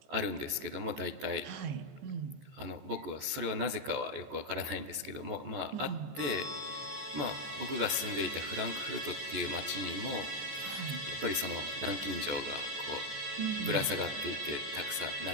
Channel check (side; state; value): left; late; 14 ms